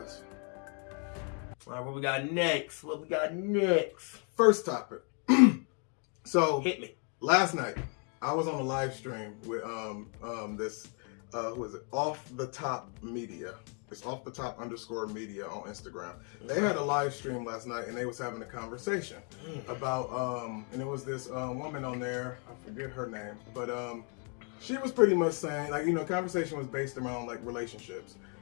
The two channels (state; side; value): quieter; right; 39.4 dB